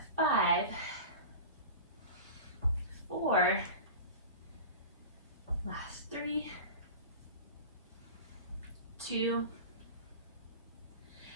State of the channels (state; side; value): inverted; both; correlation -0.31